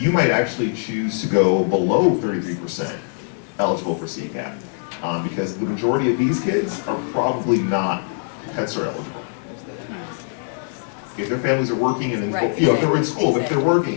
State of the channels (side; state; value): right; silent; digital silence